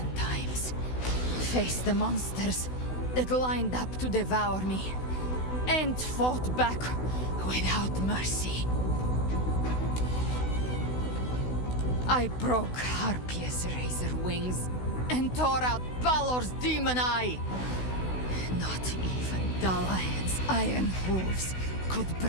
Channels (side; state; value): right; late; 16 ms